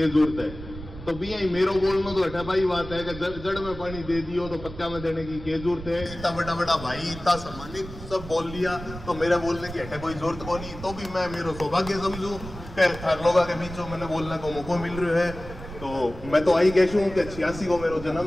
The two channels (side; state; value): right; noise; rumble, 12 dB below the sound